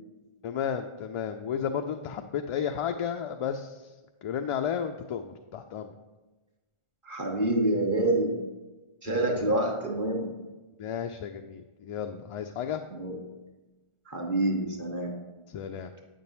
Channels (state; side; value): late; right; 1.4 ms